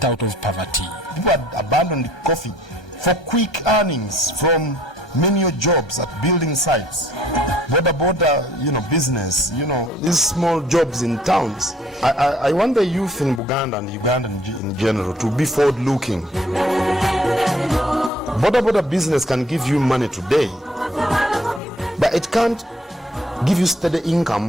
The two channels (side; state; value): both; normal; correlation 0.60